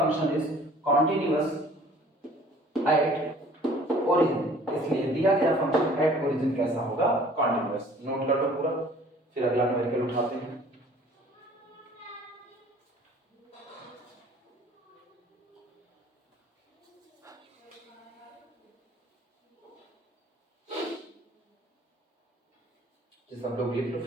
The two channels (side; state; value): both; normal; correlation 0.52